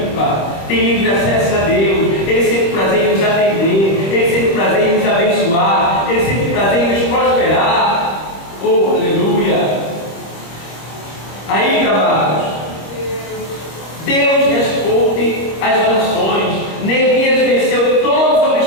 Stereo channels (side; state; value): right; late; 26 ms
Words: tem livre acesso a Deus, Ele sempre prazer em nos atender. Deus responde às orações. Neemias venceu todos os